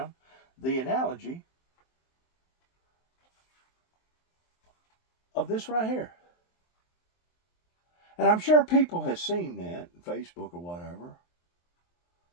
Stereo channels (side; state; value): right; late; 23 ms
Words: the analogy of this right here. And I'm sure people have seen that on Facebook or whatever,